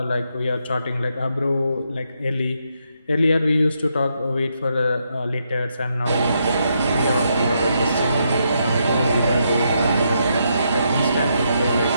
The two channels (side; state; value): both; inverted; correlation -0.79